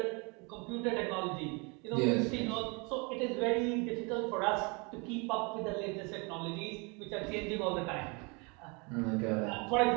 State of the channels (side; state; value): left; quieter; 30.6 dB